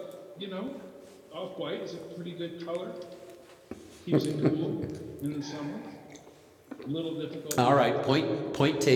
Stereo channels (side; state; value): both; identical; correlation 1.00